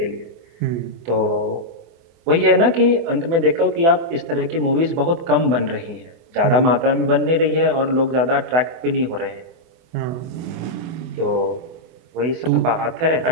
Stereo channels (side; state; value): left; late; 24 ms